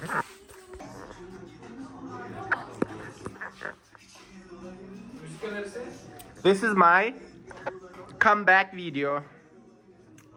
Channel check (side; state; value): both; identical; correlation 1.00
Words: This is my comeback video